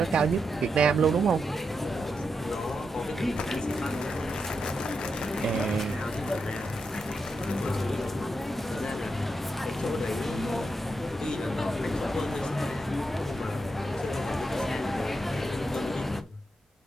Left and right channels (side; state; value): both; normal; correlation 0.85